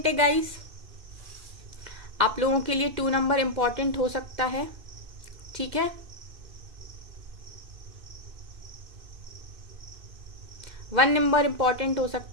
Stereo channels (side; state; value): left; late; 2.5 ms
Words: है गाइस, आप लोगों के लिए 2 नंबर इंपॉर्टेंट हो सकता है, ठीक है। 1 नंबर इंपॉर्टेंट हो